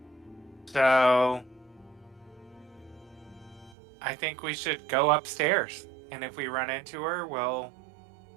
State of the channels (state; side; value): drops out; left; at 3.8 s